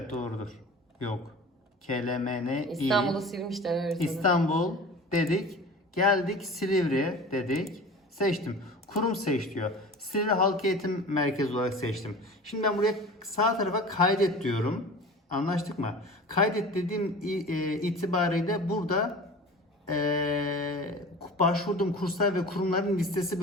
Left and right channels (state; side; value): normal; both; correlation 0.38